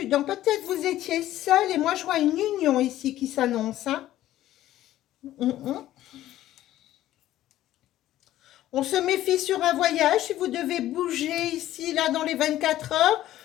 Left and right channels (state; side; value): quieter; right; 13.8 dB